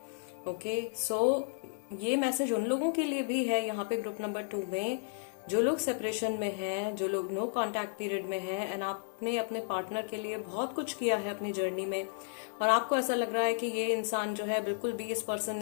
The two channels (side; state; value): right; silent; digital silence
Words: ओके, सो ये मैसेज उन लोगों के लिए भी है यहाँ पे ग्रुप नंबर 2 में, जो लोग सेपरेशन में हैं, जो लोग नो कांटेक्ट पीरियड में हैं, एंड आपने अपने पार्टनर के लिए बहुत कुछ किया है अपनी जर्नी में, और आपको ऐसा लग रहा है कि ये इंसान जो है बिल्कुल भी, इस पर्सन